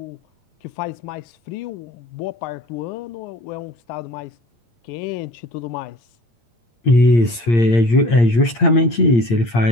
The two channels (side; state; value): right; late; 8.6 ms